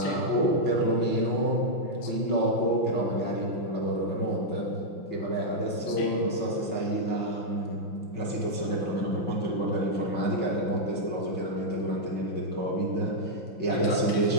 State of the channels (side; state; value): right; late; 6.0 ms